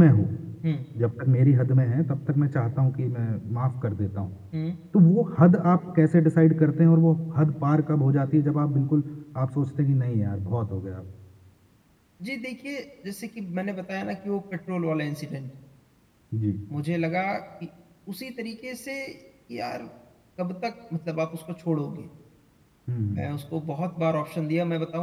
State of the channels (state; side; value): identical; both; correlation 1.00